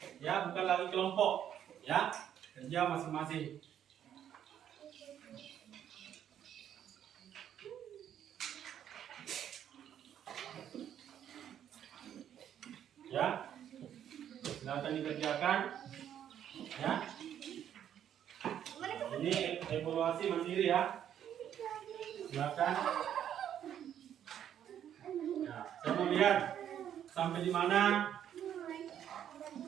ya, bukan lagi kelompok, ya, kerja masing-masing. Ya, silakan dikerjakan, ya. Ini evaluasi mandiri, ya. Silakan. Nah, saya mau lihat sampai di mana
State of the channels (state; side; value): quieter; left; 9.9 dB